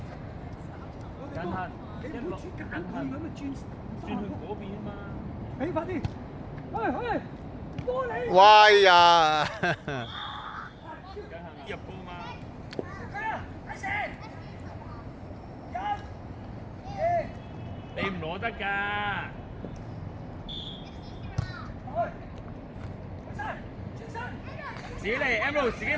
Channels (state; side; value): identical; both; correlation 1.00